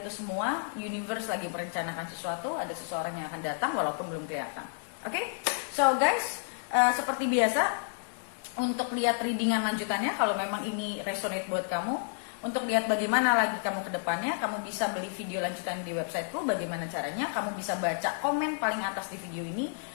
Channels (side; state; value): right; silent; digital silence